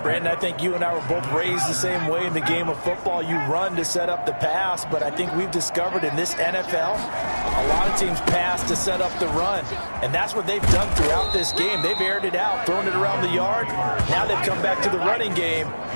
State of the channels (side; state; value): both; inverted; correlation -1.00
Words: Brandon, I think you and I were both raised the same way in the game of football. You run to set up the pass, but I think we've discovered in this NFL, a lot of teams pass to set up the run. And that's what they've done throughout this game. They've aired it out, thrown it around the yard. Now they've come back to the running game,